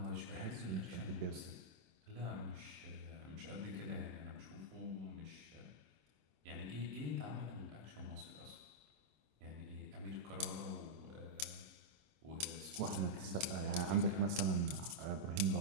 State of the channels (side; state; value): left; late; 26 ms